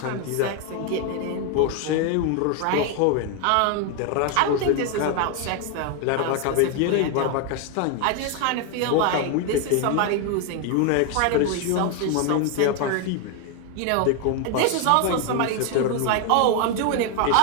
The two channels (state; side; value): different; both; correlation 0.01